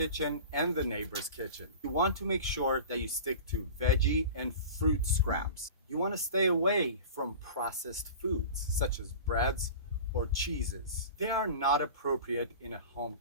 and the neighbor's kitchen. You want to make sure that you stick to veggie and fruit scraps. You want to stay away from processed foods such as breads or cheeses. They are not appropriate in a home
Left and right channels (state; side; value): inverted; both; correlation -0.35